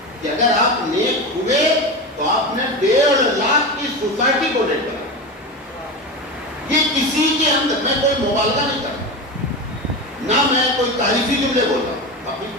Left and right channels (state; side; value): normal; both; correlation 0.22